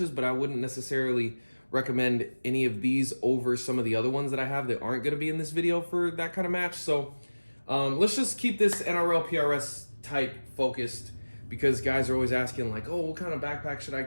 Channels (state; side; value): inverted; both; correlation -1.00